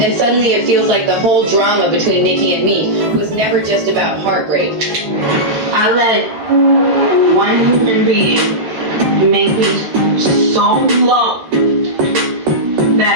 suddenly it feels like the whole drama between Nicki and Meek was never just about heartbreak. I let one human being make me so low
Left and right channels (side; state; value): left; late; 13 ms